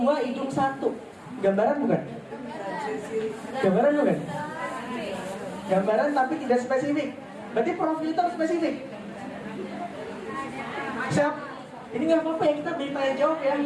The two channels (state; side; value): identical; both; correlation 1.00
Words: hidung 1. Gambaran bukan? Gambaran bukan? Gambaran tapi tidak spesifik. Berarti profil itu harus spesifik. Siap? Ini nggak apa-apa ya, kita beri tanya jawab ya,